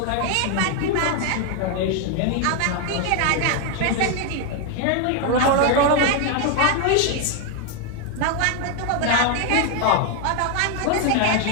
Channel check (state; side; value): different; both; correlation 0.01